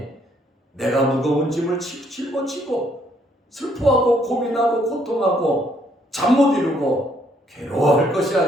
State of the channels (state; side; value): normal; both; correlation 0.68